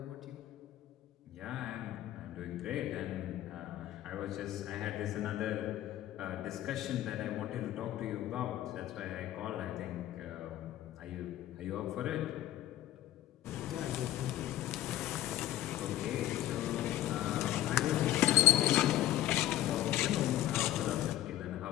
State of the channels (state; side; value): quieter; right; 13.9 dB